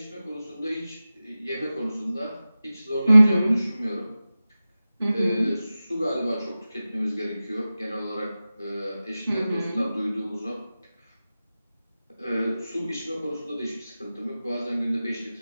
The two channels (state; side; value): inverted; both; correlation -0.95